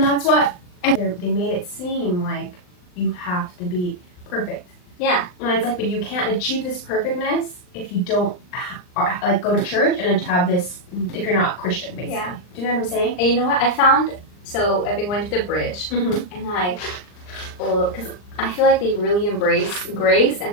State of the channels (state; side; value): late; right; 39 ms